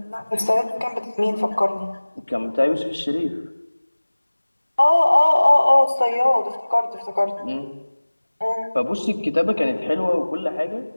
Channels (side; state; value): both; inverted; correlation -1.00